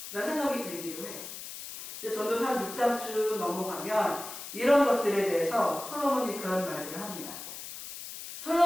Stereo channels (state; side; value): noise; left; hiss, 10 dB below the sound